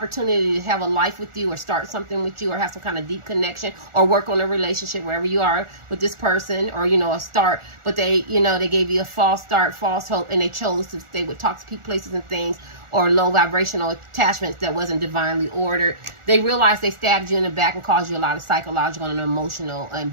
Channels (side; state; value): left; late; 1.4 ms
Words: to have a life with you or start something with you or have some kind of deep connection or work on a relationship wherever you are with this person or, you know, a start. But they, you know, they gave you a false start, false hope, and they chose to stay with toxic places and things or low vibrational attachments that wasn't divinely ordered. They realized they stabbed you in the back and caused you a lot of psychological and emotional and